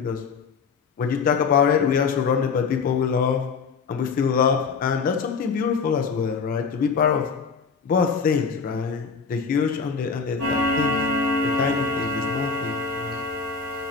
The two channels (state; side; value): quieter; right; 5.3 dB